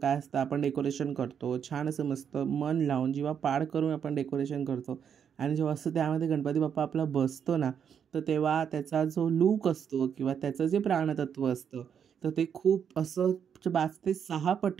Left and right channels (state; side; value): quieter; left; 7.8 dB